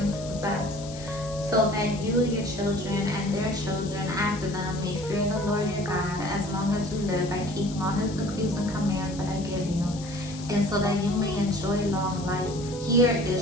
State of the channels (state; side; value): noise; left; hiss, 15 dB below the sound